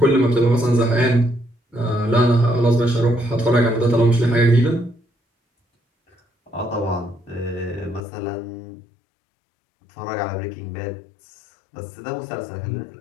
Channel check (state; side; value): drops out; right; at 8.0 s